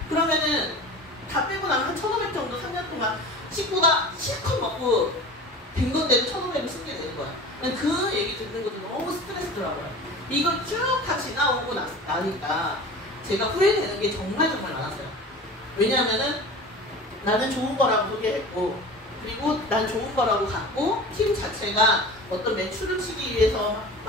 그러면은 다 빼고 나면 한 1,500 정도 3년 동안 식구가 실컷 먹고 된 건데도 1,500을 쓰게 되는 거야. 그 얘기 듣는 것도 너무 스트레스더라고요. 이걸 쭉 다 지나오고 나니까 제가 후회되는 게 정말 많았어요. 왜냐하면은 나는 좋은 거라고 소개했고, 그리고 난 좋은 거라고 갖고, 팀 자체가 어떤 매출을 치기 위해서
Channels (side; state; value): both; normal; correlation 0.36